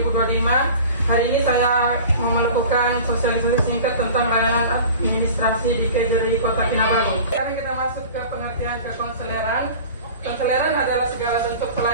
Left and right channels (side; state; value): both; inverted; correlation -0.39